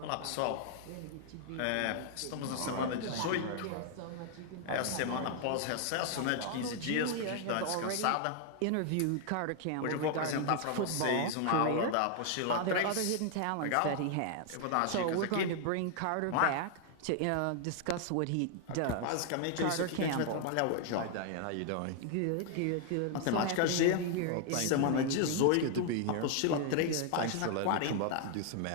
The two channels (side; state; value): both; different; correlation 0.00